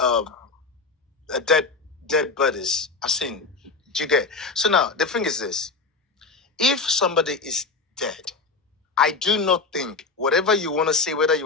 dead bodies. I've seen. Do you get? So now the thing is this: if somebody is dead, I do not think whatever you want to say, whether you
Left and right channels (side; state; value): right; quieter; 4.0 dB